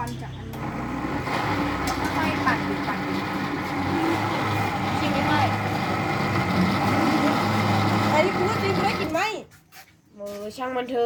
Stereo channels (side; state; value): both; identical; correlation 1.00